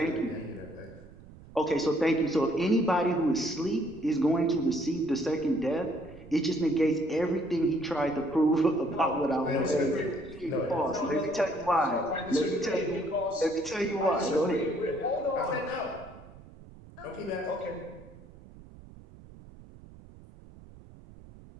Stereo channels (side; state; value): right; noise; rumble, 20 dB below the sound